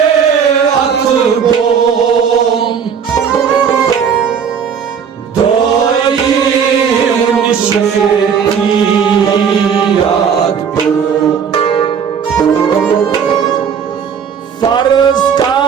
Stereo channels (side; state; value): left; quieter; 7.1 dB